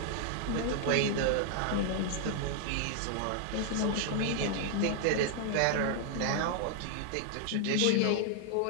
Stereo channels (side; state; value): both; different; correlation 0.00